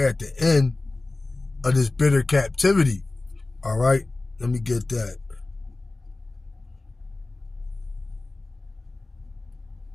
at the end of this bitter captivity. All right, let me get that.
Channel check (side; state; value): right; quieter; 3.2 dB